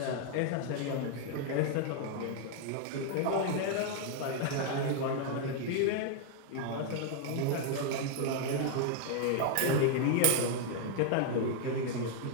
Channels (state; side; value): different; both; correlation 0.00